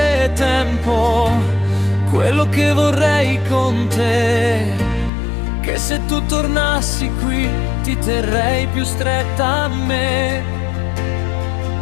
tempo, quello che vorrei con te, che se tu tornassi qui ti terrei più stretta a me.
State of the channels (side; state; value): right; drops out; at 5.1 s